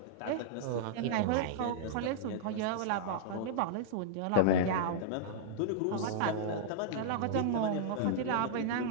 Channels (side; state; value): both; different; correlation -0.02